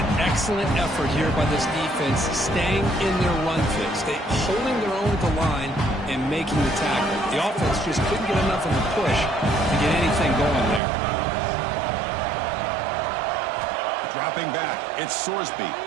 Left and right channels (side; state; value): left; drops out; at 10.8 s